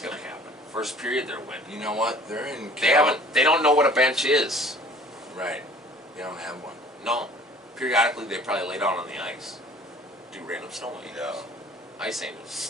going to happen? First period, they're winning. You know what? They're in They Cal. haven't. They don't know what a bench is. Right. They don't have one. No. Periodically, they probably lay down on the ice, do random snowing. Yeah. Ice angels.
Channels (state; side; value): normal; both; correlation 0.50